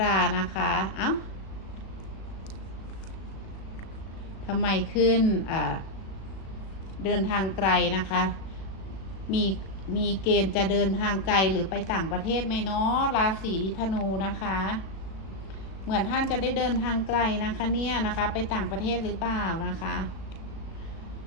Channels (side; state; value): right; late; 37 ms